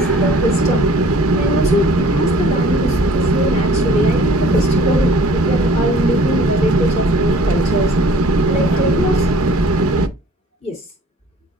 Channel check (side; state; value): both; normal; correlation 0.51